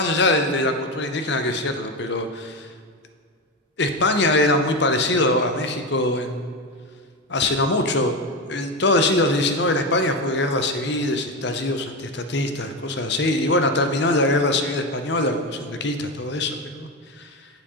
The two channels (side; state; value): both; normal; correlation 0.16